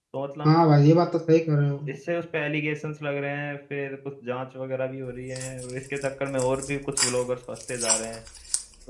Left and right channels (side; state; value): both; identical; correlation 1.00